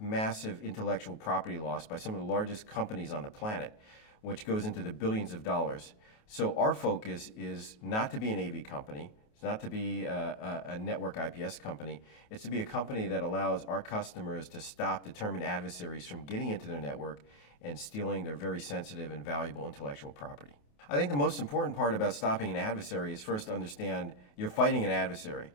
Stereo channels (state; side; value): late; right; 28 ms